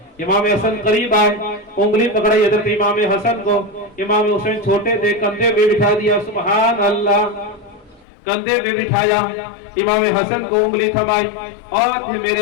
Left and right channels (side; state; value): right; drops out; at 8.1 s